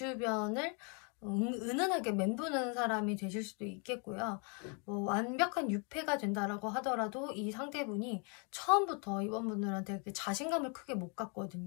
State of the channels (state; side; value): quieter; right; 36.4 dB